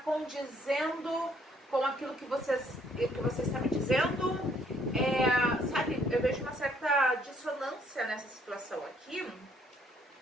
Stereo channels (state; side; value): normal; both; correlation 0.66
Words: com aquilo que você está me dizendo. Sabe, eu vejo uma certa dissonância nessa situação aqui,